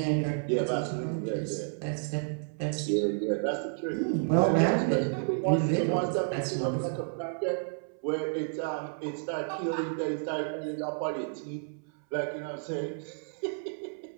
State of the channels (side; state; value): left; silent; 57 dB below the other